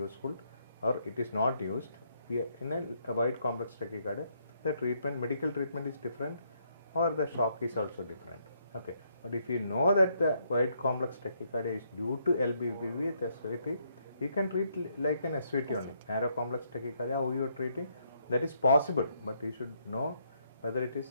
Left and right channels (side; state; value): both; inverted; correlation -0.73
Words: or it is not used. In a wide complex tachycardia, the treatment, medical treatment is different or the shock is also different. Okay. But if you know that the wide complex tachycardia is due to LBBB, the SVT, you can treat like an SVT only. Narrow complex tachycardia, how you are treating, that is possible, but you should know whether it